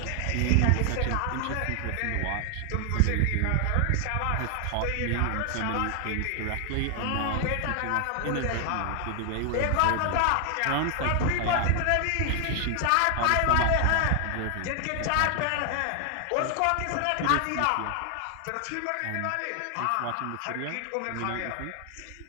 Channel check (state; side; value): different; both; correlation 0.00